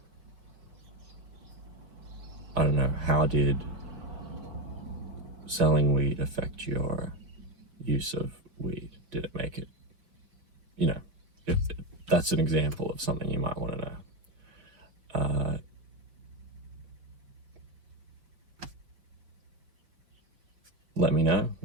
I don't know, how did selling weed affect your use of weed? Did it make it, if that's an example of something you might want to know. Let me know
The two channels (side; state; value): left; late; 5.0 ms